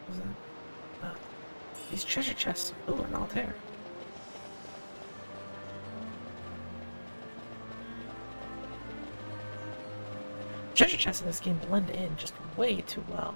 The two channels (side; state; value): both; inverted; correlation -1.00